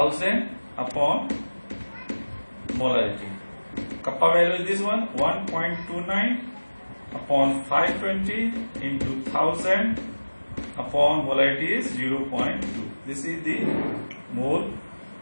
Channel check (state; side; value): inverted; both; correlation -1.00